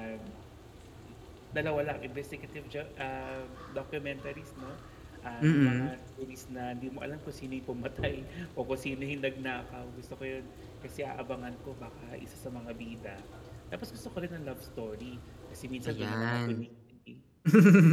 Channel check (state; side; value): identical; both; correlation 1.00